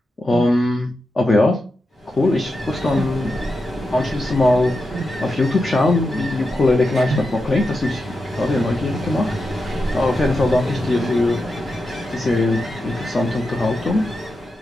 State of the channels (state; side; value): normal; both; correlation 0.88